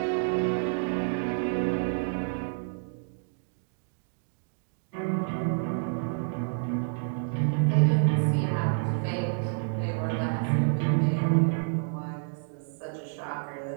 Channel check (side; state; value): left; silent; digital silence